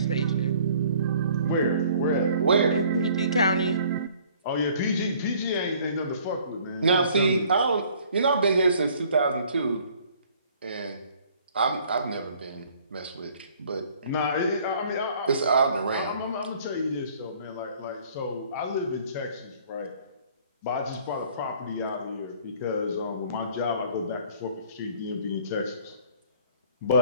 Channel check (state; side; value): inverted; both; correlation -0.56